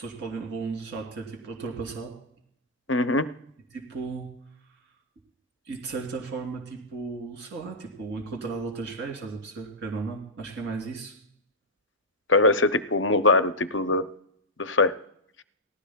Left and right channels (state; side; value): normal; both; correlation -0.08